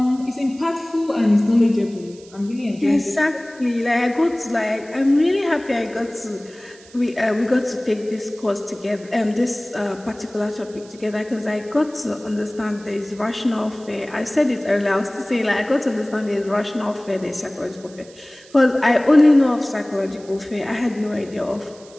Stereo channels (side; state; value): right; noise; hiss, 23 dB below the sound